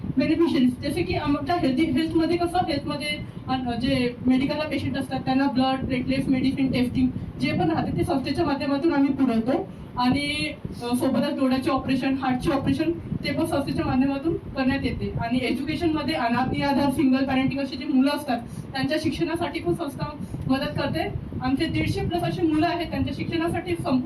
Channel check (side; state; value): both; identical; correlation 1.00